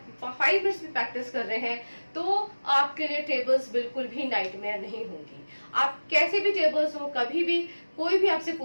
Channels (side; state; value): both; inverted; correlation -1.00